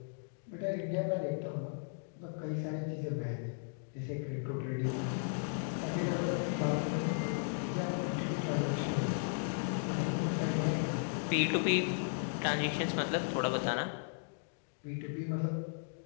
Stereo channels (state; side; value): silent; right; digital silence